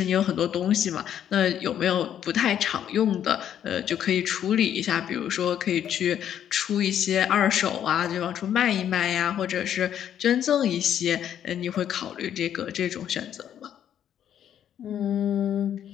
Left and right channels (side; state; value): right; quieter; 10.0 dB